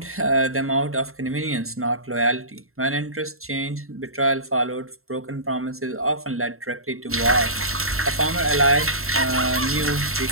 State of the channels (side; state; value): left; late; 0.62 ms